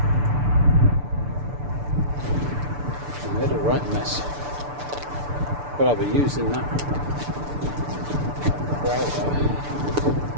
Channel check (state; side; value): late; left; 6.9 ms